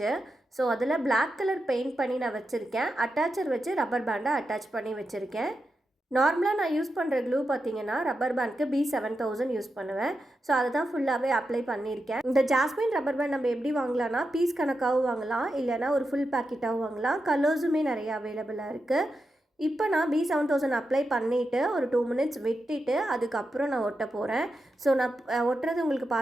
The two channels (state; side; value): normal; both; correlation 0.88